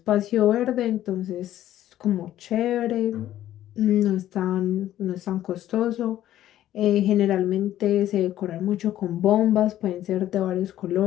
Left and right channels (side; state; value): right; quieter; 12.7 dB